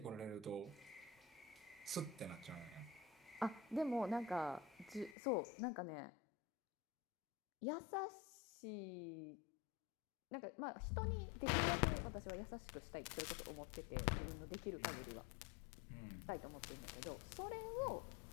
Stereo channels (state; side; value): drops out; right; at 5.2 s